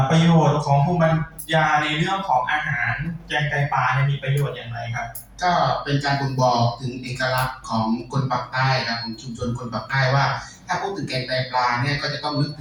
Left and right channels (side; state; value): both; identical; correlation 1.00